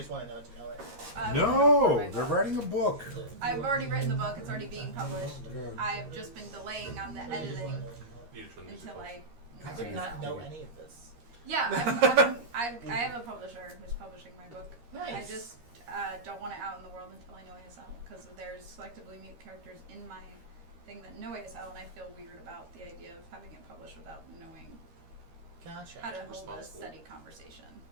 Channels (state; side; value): late; left; 13 ms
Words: want to know it? No, they're writing a book. I've already written the book. It's already being published. I've just been delaying on the editing until I did not know any of this. Yeah, I have a publisher who's publishing my book. Nice. I just don't want it out in the world until I know ASL because there's selectively mute characters in my thing that know ASL, and I feel weird about the idea of having it published without knowing Gotcha. how to hold a steady conversation.